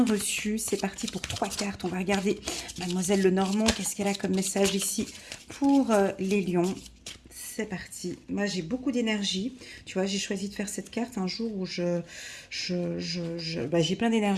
reçu. C'est parti pour 3 cartes. On va regarder Mademoiselle Lenormand, qu'est-ce qu'elle a comme message ici pour les lions. C'est parti. Moi, j'ai beaucoup d'énergie. Tu vois, j'ai choisi de faire cette carte un jour où j'ai plein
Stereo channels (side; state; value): both; identical; correlation 1.00